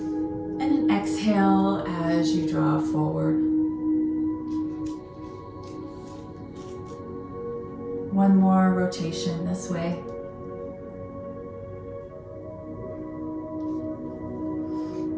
and an exhale as you draw forward. One more rotation this way.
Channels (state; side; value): identical; both; correlation 1.00